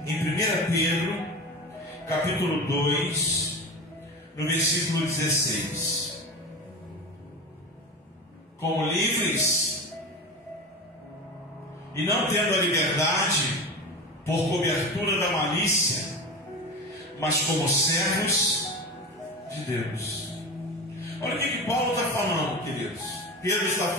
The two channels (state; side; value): normal; both; correlation 0.27